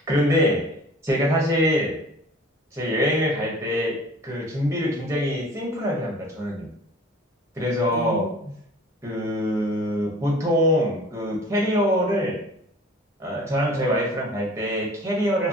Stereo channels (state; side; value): normal; both; correlation 0.45